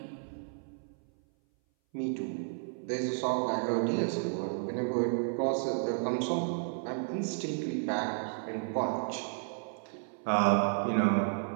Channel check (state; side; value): silent; left; 56 dB below the other